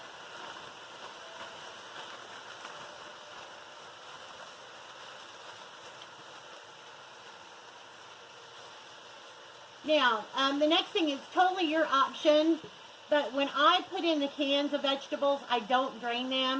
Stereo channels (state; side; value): identical; both; correlation 1.00